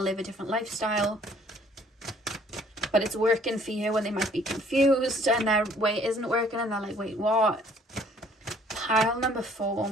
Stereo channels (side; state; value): both; normal; correlation 0.59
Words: live a different lifestyle. But it's working for you when they might be confused and their way isn't working and they're like, wait, what? Pile number 4.